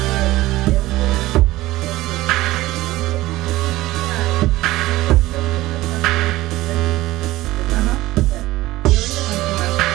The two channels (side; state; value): left; quieter; 17.5 dB